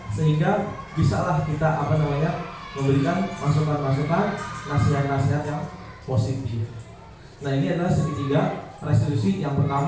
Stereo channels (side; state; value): both; identical; correlation 1.00